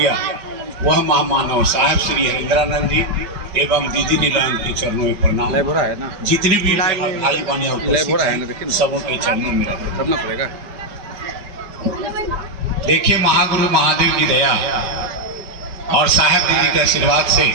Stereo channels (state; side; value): late; left; 5.3 ms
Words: वह महामानव साहब श्री हरिंद्रानंद जी एवं दीदी नीलाम के चरणों में प्रणाम। जितने भी भाई बहन सबों के चरणों में करना पड़ेगा। देखिए, महागुरु महादेव की दया और साहब दीदी के आशीर्वाद से